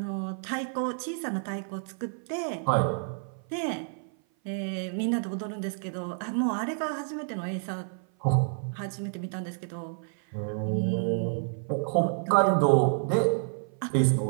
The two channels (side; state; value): left; silent; 55 dB below the other